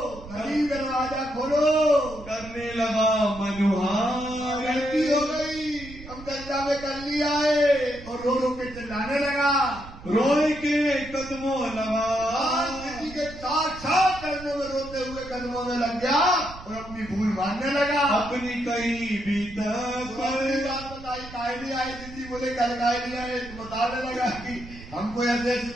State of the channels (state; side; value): noise; right; rumble, 16 dB below the sound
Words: धनी दरवाजा खोलो। करने लगा मनुहार, गलती हो गई, हम चर्चा में कर लिया है। और रो रो के चिल्लाने लगा, रोए के कदमों लगा, किसी के साथ करने में रोते हुए कदमों में लग गया और अपनी भूल मानने लगा। अपनी कई बीतक बात बताई, काहे नहीं आए? दीदी बोले कल काहे नहीं आए? बताने लगा कि हमको ऐसी ऐसी